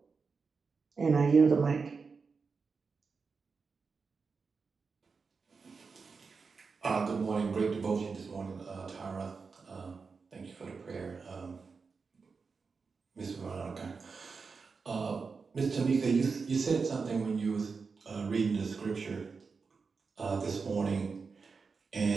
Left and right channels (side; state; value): left; quieter; 4.9 dB